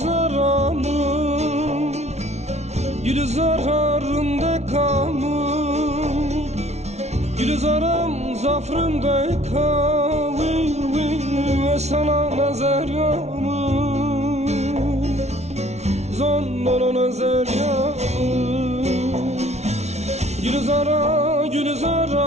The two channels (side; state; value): left; late; 0.32 ms